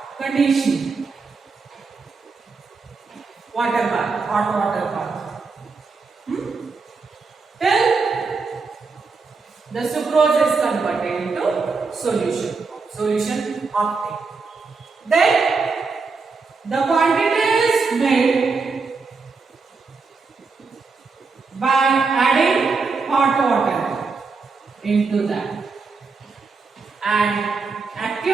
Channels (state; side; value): quieter; left; 4.5 dB